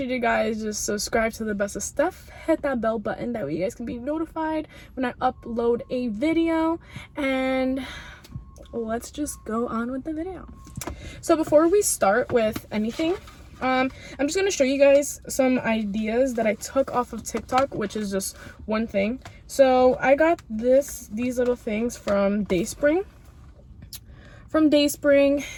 to guys just subscribe to the best of stuff, hit that bell button, that way you guys can be notified when I upload a video, and let's just go on with the video. So before we start with anything, I'm just going to show you guys some ideas that I took off of TikTok, which is just one thing. So I got these little things from Dayspring,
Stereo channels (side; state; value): both; identical; correlation 1.00